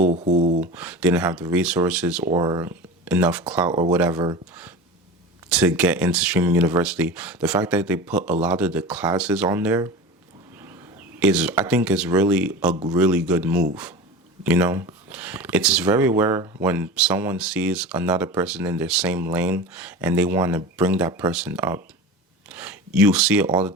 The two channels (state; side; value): normal; both; correlation 0.32